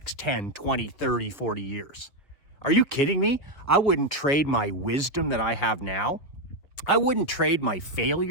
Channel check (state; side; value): late; right; 5.1 ms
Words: 10, 20, 30, 40 years. Are you kidding me? I wouldn't trade my wisdom that I have now. I wouldn't trade my